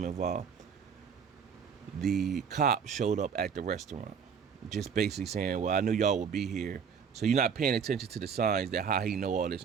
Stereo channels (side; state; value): left; quieter; 6.7 dB